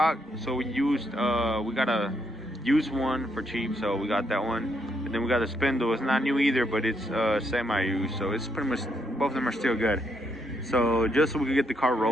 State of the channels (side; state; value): both; normal; correlation 0.76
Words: so we got a used one for cheap, so we got that one. And then we got the spindle. It's not new either, but it's semi-used, so it's pretty much both of them are still good. So just so we can get the car